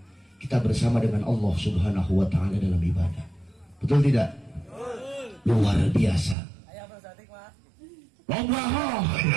kita bersama dengan Allah subhanahu wa ta'ala dalam ibadah betul tidak? Luar biasa. Loba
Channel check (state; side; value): drops out; left; at 6.4 s